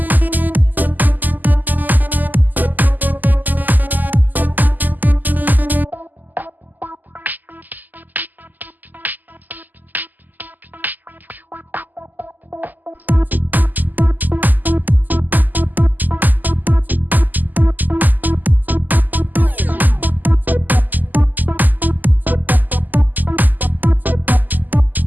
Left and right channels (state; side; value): late; left; 0.084 ms